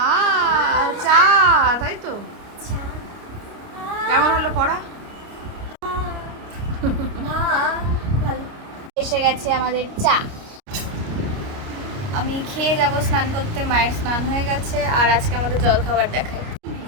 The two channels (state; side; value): late; left; 29 ms